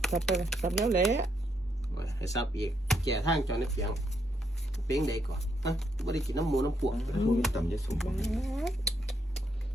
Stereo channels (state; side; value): normal; both; correlation 0.76